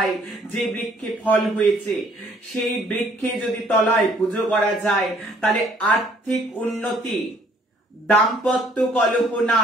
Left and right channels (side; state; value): both; normal; correlation 0.61